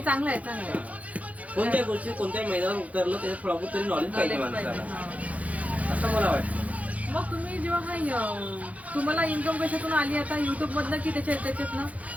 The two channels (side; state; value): left; late; 0.069 ms